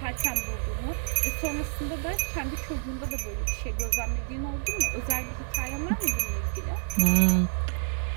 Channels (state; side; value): silent; left; digital silence